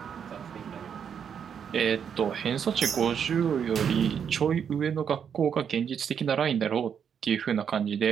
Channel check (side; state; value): left; quieter; 7.6 dB